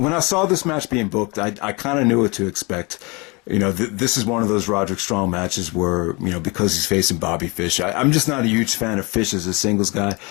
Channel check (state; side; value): quieter; right; 28.0 dB